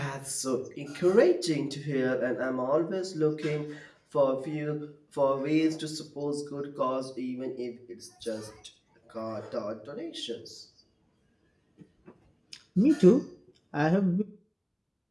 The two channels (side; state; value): both; identical; correlation 1.00